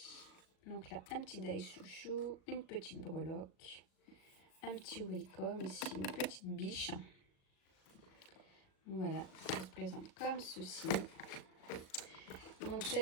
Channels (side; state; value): right; late; 37 ms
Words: Donc là, un petit die chouchou, une petite breloque, un petit welcome, ici une petite biche. Voilà, ça se présente comme ceci. Donc